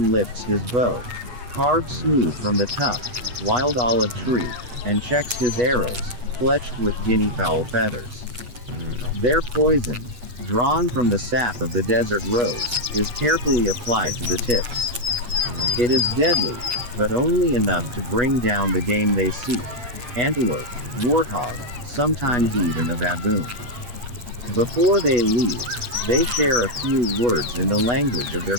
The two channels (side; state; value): left; late; 8.2 ms